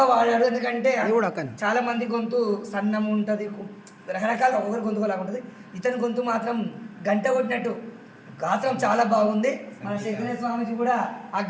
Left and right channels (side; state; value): both; identical; correlation 1.00